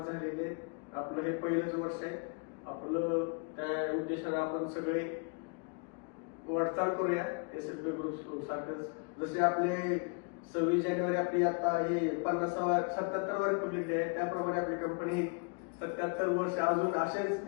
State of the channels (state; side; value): quieter; right; 37.3 dB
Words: झालेली आहे. आपलं हे पहिलंच वर्ष आहे. आपलं त्या उद्देशाने आपण सगळे वाटचाल करूया एसएलपी ग्रुप सारखंच. जसे आपले 26 जानेवारी आपली आता हे 77वा रिपब्लिक डे आहे, त्याप्रमाणे आपली कंपनी 77 वर्ष अजून असेच